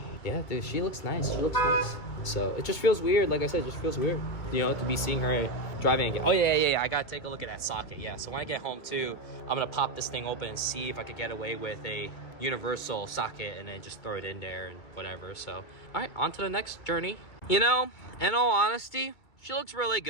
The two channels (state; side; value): late; right; 2.3 ms